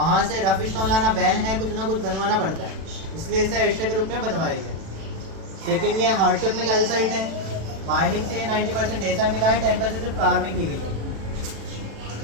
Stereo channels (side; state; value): left; late; 36 ms